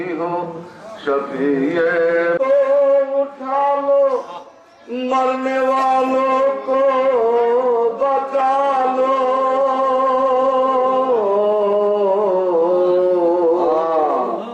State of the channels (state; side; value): identical; both; correlation 1.00